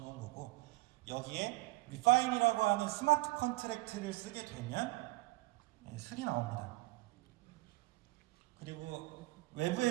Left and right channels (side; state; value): left; quieter; 21.6 dB